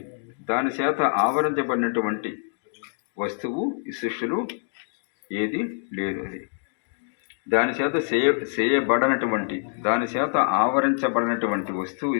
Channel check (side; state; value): right; silent; digital silence